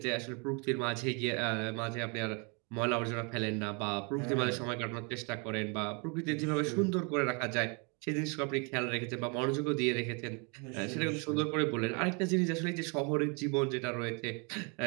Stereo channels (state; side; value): quieter; left; 33.8 dB